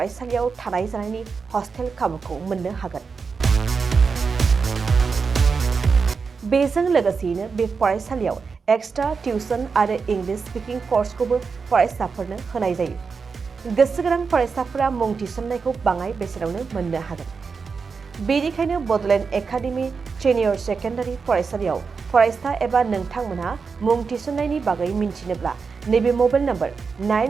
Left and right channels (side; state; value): left; quieter; 5.2 dB